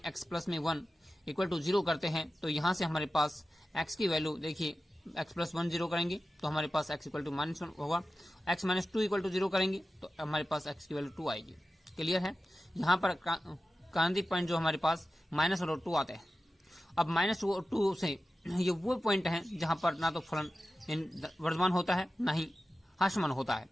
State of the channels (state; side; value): normal; both; correlation 0.94